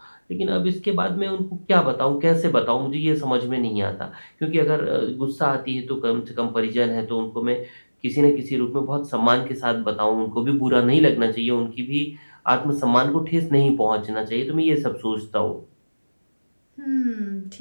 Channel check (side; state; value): both; inverted; correlation -1.00